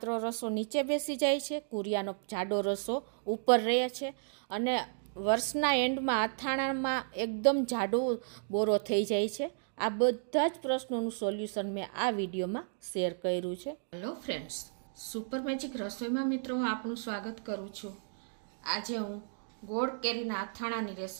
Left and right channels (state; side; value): silent; left; digital silence